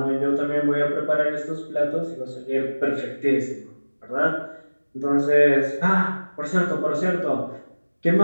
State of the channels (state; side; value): inverted; both; correlation -1.00